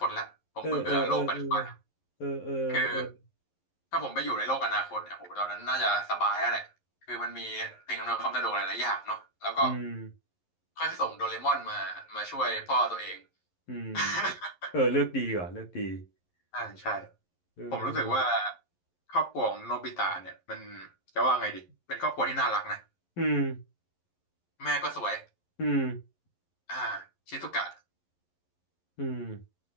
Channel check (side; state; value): right; late; 11 ms